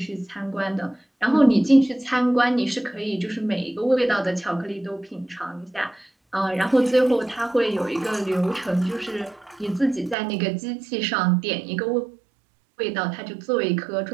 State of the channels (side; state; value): left; drops out; at 10.2 s